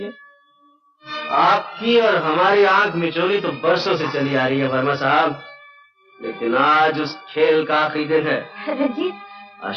आपकी और हमारी आंख मिचोली तो बरसों से चली आ रही है वर्मा साहब, लेकिन आज उस खेल का आखिरी दिन है। रंजीत,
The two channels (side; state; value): both; identical; correlation 1.00